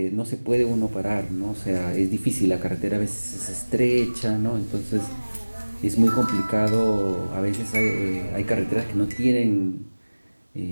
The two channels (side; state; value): both; inverted; correlation -1.00